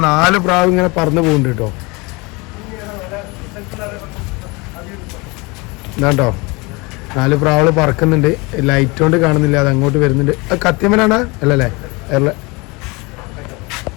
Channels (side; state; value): right; quieter; 26.4 dB